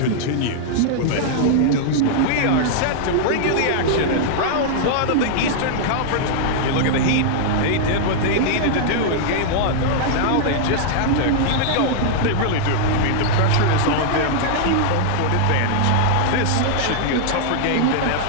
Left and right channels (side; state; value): both; different; correlation -0.01